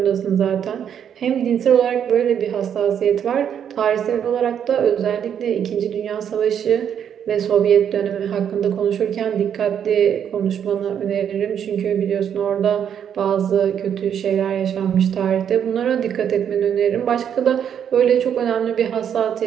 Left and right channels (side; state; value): left; quieter; 8.7 dB